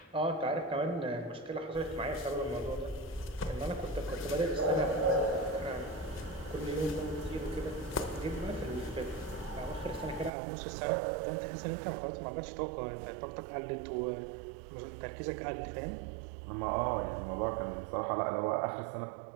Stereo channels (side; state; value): left; drops out; at 10.3 s